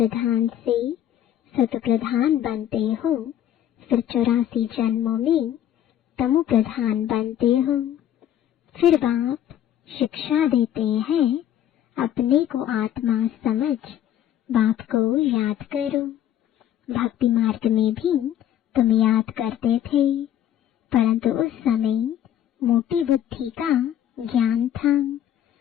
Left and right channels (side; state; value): right; quieter; 11.0 dB